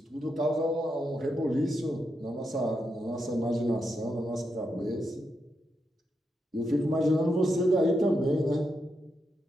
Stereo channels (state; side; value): normal; both; correlation 0.84